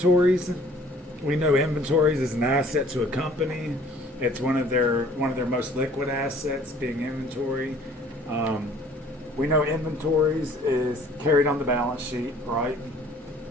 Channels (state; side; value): normal; both; correlation 0.54